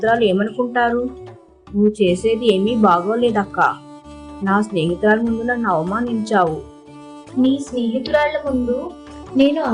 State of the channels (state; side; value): identical; both; correlation 1.00